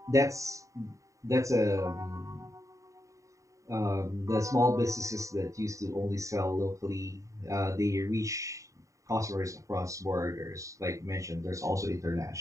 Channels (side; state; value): left; late; 0.16 ms